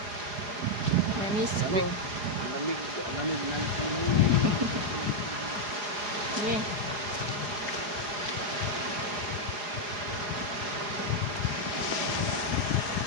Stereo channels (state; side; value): late; left; 4.8 ms